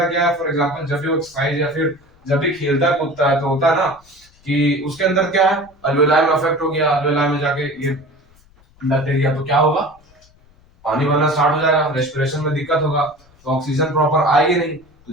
क्या है, फॉर एग्जांपल जब भी वो एक्सरसाइज या फिर जब भी खेलता कूदता है तो होता है ना कि उसके अंदर क्या है, अल्वेलाई में अफेक्ट हो गया, अल्वेलाई में जाके ये बैक्टीरिया, तो क्या होगा, पानी बनना स्टार्ट हो जाएगा, रेस्पिरेशन में दिक्कत होगा, तो ऑक्सीजन प्रॉपर आएगी नहीं, तो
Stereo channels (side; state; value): left; noise; rumble, 30 dB below the sound